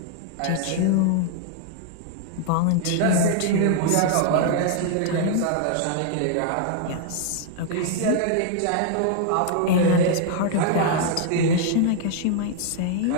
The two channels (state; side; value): different; both; correlation 0.00